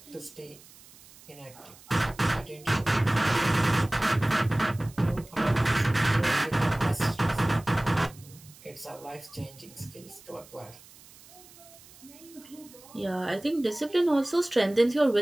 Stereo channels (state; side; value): noise; right; hiss, 23 dB below the sound